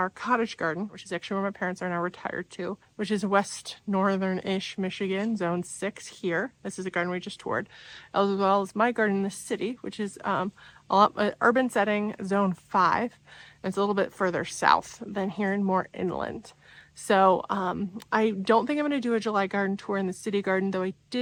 cottage garden, which is actually where my parents are now retired to, which is west northern-ish Michigan, zone 6 here. This is a garden we just toured, as well as my garden in the city, which is urban setting, zone 5. It's a little bit further south than here and more inland. So I don't think I'm going to do a July garden tour in the city garden, though I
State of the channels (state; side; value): identical; both; correlation 1.00